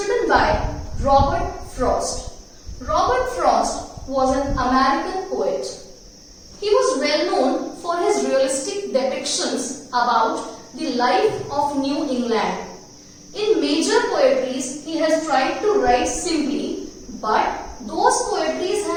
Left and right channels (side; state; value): both; identical; correlation 1.00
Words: by Robert Frost. Robert Frost was an American poet. He was well known for his realistic depictions about the life of New England. In major poetries, he has tried to write simply, but those poetries